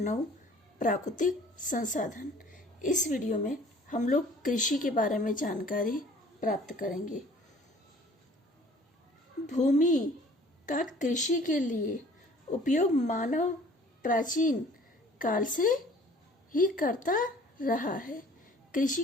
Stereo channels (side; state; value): both; normal; correlation 0.52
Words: प्राकृतिक संसाधन। इस वीडियो में हम लोग कृषि के बारे में जानकारी प्राप्त करेंगे। भूमि का कृषि के लिए उपयोग मानव प्राचीन काल से ही करता रहा है। कृषि